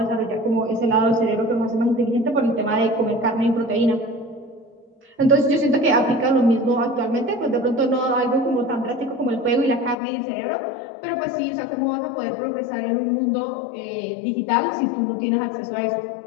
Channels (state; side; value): drops out; right; at 10.0 s